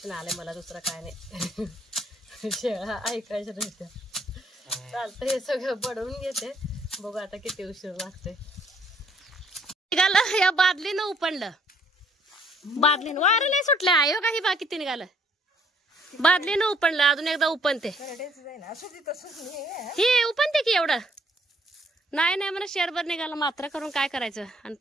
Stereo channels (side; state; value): both; normal; correlation 0.64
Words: आलंय मला, दुसरं काय नाही. शेळ्या ऐकायचं नसतं. चालतं हे सगळं बडवून घेते. बघू आता किती उशीर लागते. निघालं या बादलीनं उपणलं, बादलीनं वारं नाही सुटलं. आयो काही बाकी ते निघालं बादलीनं उपणलं. अजून एकदा उपणते हे उपणते की एवढं नाही नाही मला शेरभर निघाला मात्र करून काय करायचं. आणि